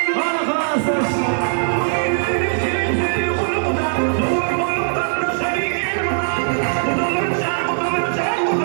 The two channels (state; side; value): silent; left; digital silence